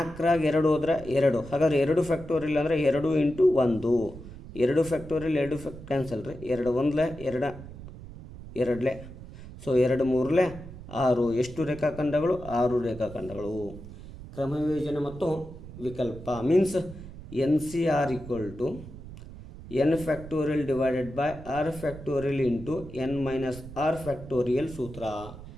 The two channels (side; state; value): right; noise; rumble, 14 dB below the sound